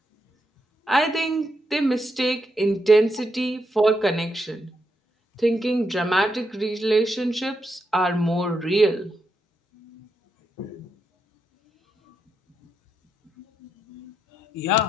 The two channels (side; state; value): both; normal; correlation 0.82